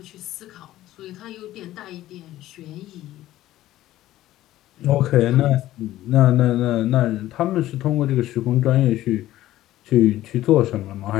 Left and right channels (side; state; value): right; quieter; 14.7 dB